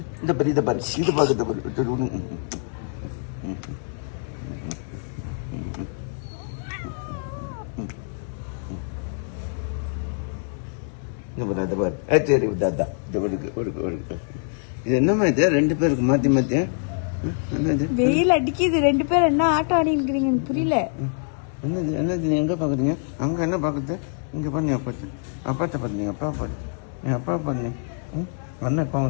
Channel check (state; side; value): silent; right; digital silence